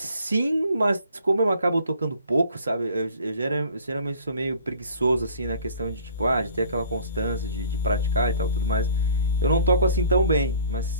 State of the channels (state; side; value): inverted; both; correlation -0.50